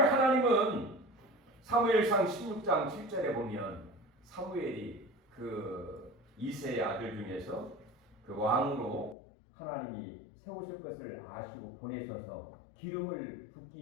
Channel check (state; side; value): drops out; right; at 9.2 s